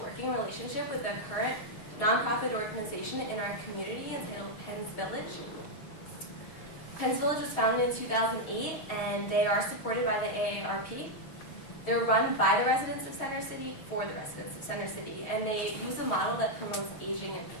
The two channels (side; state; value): right; late; 6.5 ms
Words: relationship with a current nonprofit organization in our community entitled Penn's Village. Penn's Village was founded in 2008, and they are supported by the AARP. They're run by the residents of Center City for the residents of Center City, and they use a model that promotes aging in